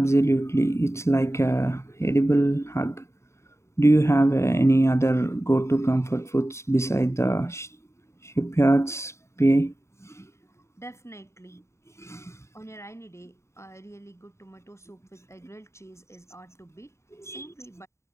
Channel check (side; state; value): right; late; 0.14 ms